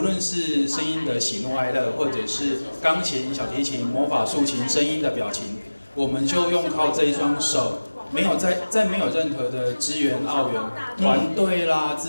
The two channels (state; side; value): inverted; both; correlation -1.00